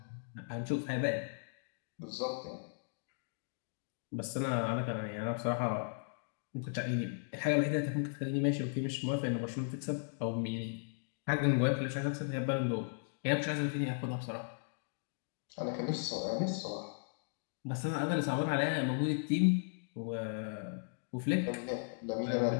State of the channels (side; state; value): right; silent; digital silence